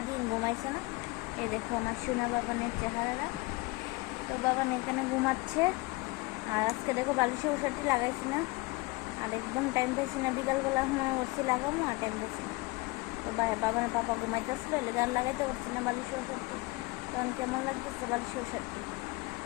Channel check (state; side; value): quieter; right; 23.8 dB